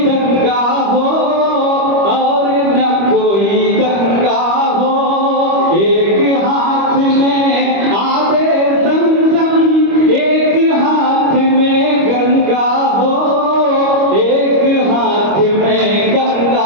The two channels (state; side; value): late; left; 25 ms